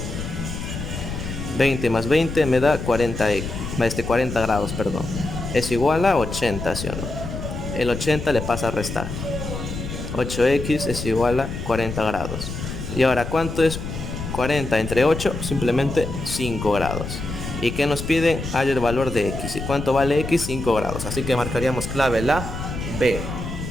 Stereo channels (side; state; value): left; noise; rumble, 6 dB below the sound